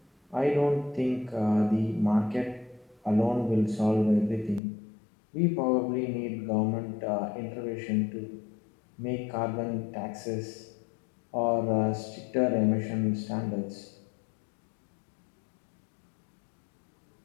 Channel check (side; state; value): right; drops out; at 4.6 s